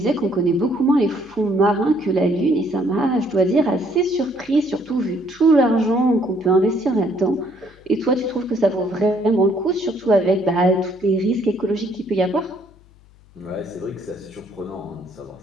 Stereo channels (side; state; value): left; noise; hum, 27 dB below the sound